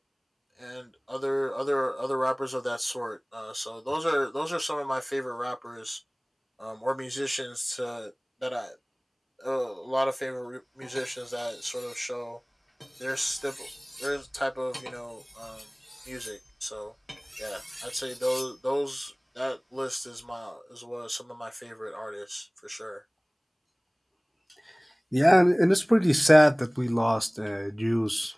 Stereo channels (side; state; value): both; identical; correlation 1.00